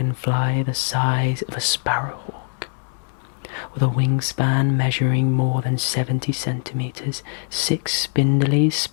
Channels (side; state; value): right; silent; digital silence